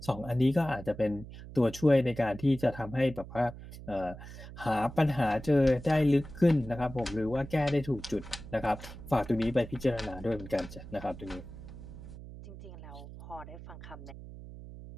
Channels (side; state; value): right; noise; hum, 14 dB below the sound